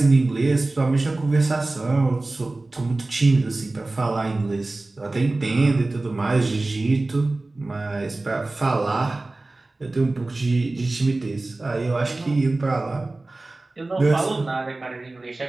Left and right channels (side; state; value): left; quieter; 3.1 dB